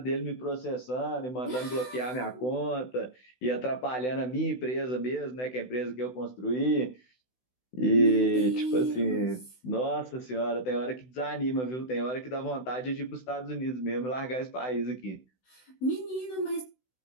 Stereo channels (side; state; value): right; late; 16 ms